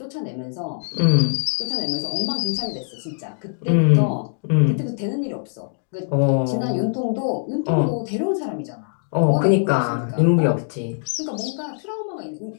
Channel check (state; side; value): silent; right; digital silence